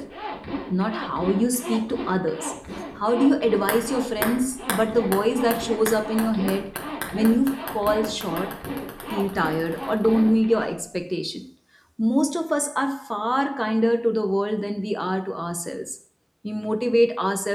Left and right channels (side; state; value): both; identical; correlation 1.00